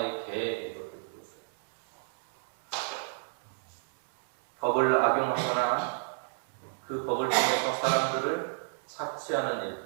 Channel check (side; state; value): left; silent; digital silence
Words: 개 이렇게 불렀어요. 법을 악용하거나 그 법을 통해서 사람들을 착취하는